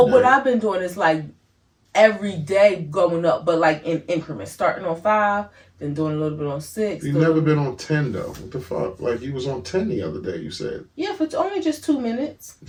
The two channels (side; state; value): both; identical; correlation 1.00